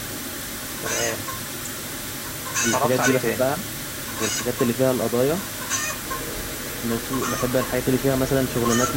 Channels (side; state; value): both; identical; correlation 1.00